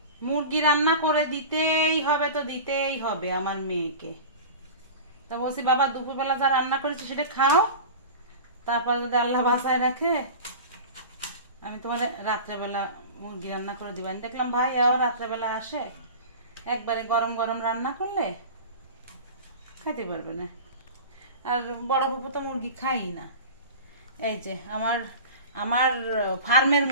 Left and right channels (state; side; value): inverted; both; correlation -0.34